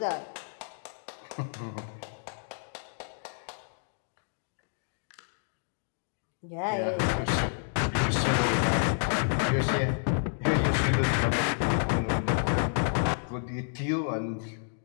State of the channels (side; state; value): right; silent; digital silence